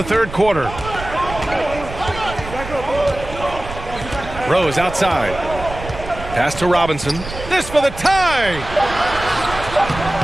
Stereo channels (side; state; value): right; noise; rumble, 11 dB below the sound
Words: third quarter. Rose outside. Pass to Robinson. This for the tie!